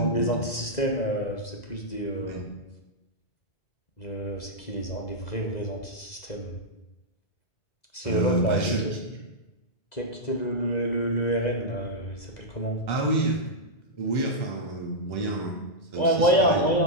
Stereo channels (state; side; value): late; right; 2.0 ms